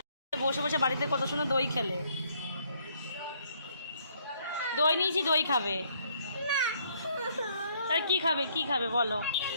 বসে বসে বাড়িতে কত সুন্দর দই খেলে। দই নিয়েছি, দই খাবে। তার কি খাবে, কি খাবে বলো?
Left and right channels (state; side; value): inverted; both; correlation -0.68